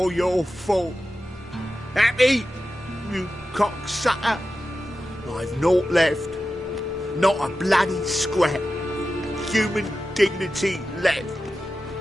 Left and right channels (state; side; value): normal; both; correlation 0.92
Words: your fault. Happy, you cocksucker. I've naught left. Not a bloody scrap. Human dignity left.